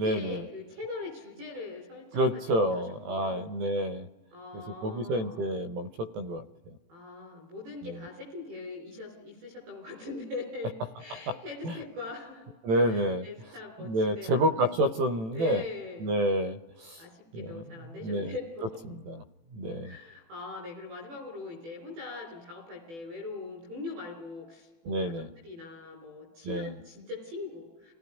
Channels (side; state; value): left; late; 18 ms